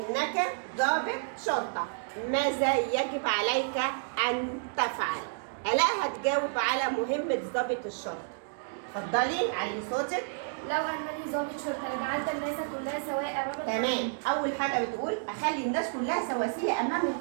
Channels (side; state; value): left; silent; digital silence